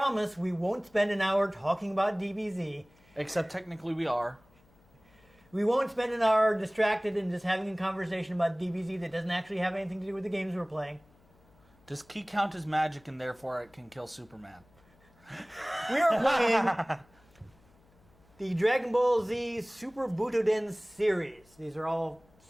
we won't spend an hour talking about DBZ. Except technically we are. We won't spend an hour distracted and just having a conversation about DBZ that doesn't actually have anything to do with the games we're playing. Does Ki count as magic and therefore it can kill Superman? We are playing the Dragon Ball Z Super Butoden series. These are all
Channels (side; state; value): left; noise; hum, 30 dB below the sound